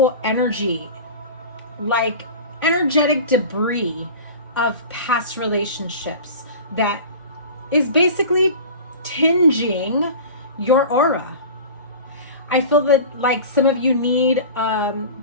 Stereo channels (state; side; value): inverted; both; correlation -0.35